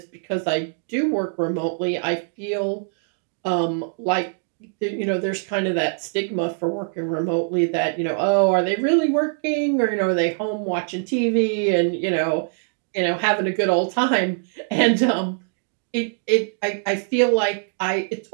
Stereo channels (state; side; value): silent; left; digital silence